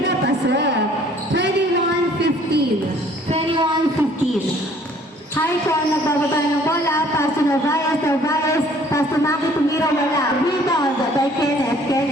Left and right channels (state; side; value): normal; both; correlation 0.57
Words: pasok. 21-15. 21-15. Haikon, nagbababa ng bola. Pass to Narvaez, Narvaez. Pass to Maki, tumira, wala. Rebound by Kenneth,